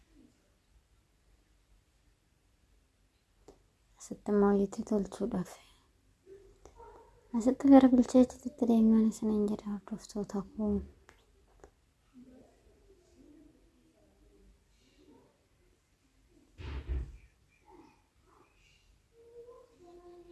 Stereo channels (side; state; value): both; identical; correlation 1.00